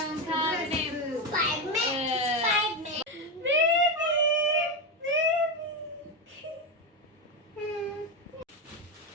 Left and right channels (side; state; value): both; normal; correlation 0.11